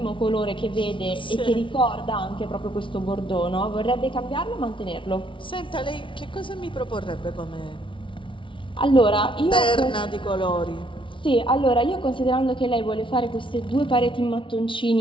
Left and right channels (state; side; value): late; right; 0.25 ms